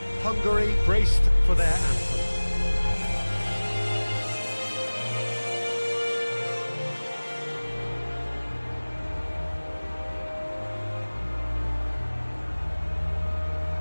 Hungary braced for their anthem.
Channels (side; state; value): both; inverted; correlation -1.00